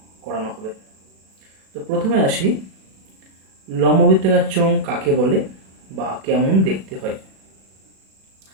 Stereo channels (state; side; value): late; left; 37 ms